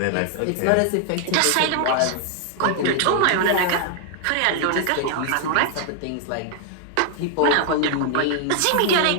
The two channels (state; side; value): different; both; correlation 0.00